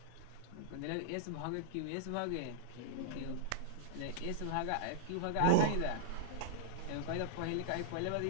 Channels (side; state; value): both; different; correlation -0.01